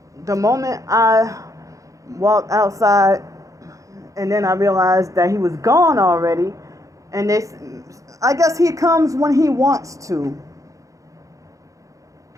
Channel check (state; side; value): late; left; 0.16 ms